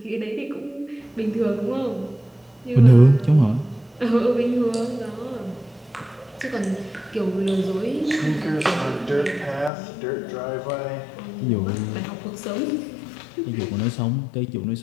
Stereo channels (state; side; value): drops out; right; at 9.7 s